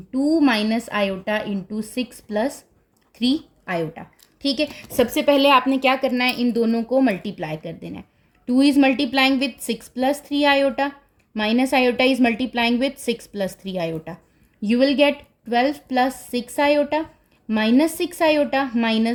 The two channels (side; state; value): both; identical; correlation 1.00